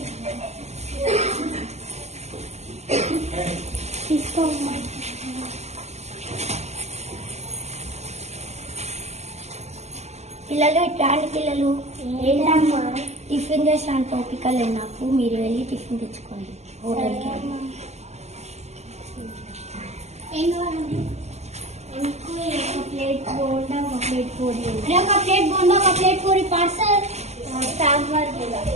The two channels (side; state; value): left; late; 0.32 ms